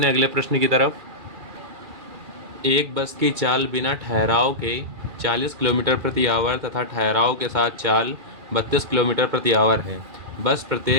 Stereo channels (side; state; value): left; late; 2.4 ms